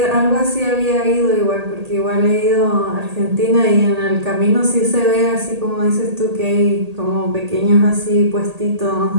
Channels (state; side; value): late; left; 1.8 ms